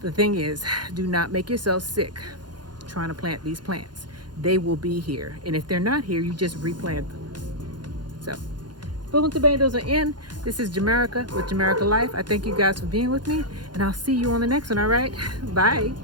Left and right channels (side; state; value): left; late; 0.71 ms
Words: The thing is, do not make yourself sick trying to plant these plants. They will be here. And if they're not here, you just replant them. So, spoon tomatoes are in. This is Jamaica with Jamaica Life. I thank you guys for being with me. And I'll see you on the next one, all right? Bye.